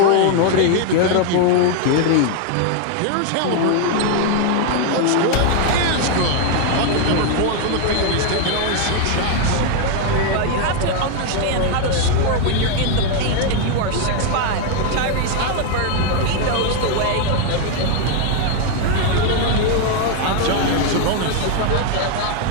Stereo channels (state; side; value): different; both; correlation 0.01